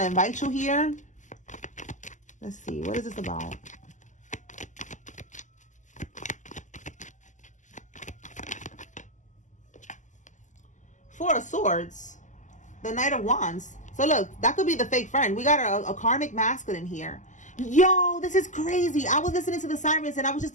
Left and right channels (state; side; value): late; right; 0.36 ms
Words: invite you here. Let's see. What is this about? Four of Swords. The Knight of Wands. So look, that could be the fake friend. We got a karmic masculine here. Yo, this is crazy. I was listening to the sirens and I was just